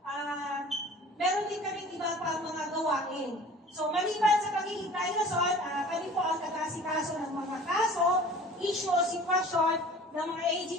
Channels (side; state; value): both; normal; correlation 0.45